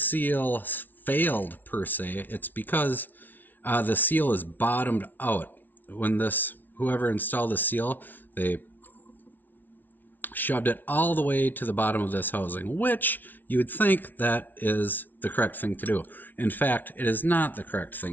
failed per se. It's because the seal is bottomed out. When whoever installed the seal, they shoved it all the way to the bottom of this housing, which you would think that is the correct thing to do. In fact, it is not the correct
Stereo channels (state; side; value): late; right; 0.085 ms